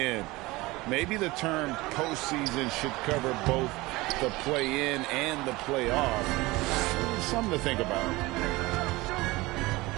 Maybe the term postseason should cover both the play-in and the playoff. Something to think about.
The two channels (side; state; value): left; quieter; 21.1 dB